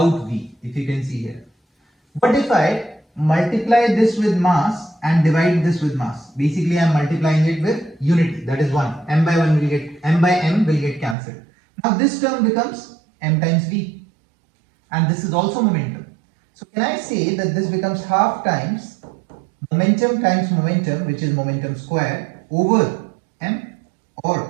v, if you can see here. What if I multiply this with mass and divide this with mass? Basically, I am multiplying it with unity, that is 1. M by 1 will get, m by m will get cancelled. Now this term becomes m times v, and this is also momentum. So can I say that this becomes half times momentum, which is momentum square, over m,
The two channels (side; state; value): left; drops out; at 11.2 s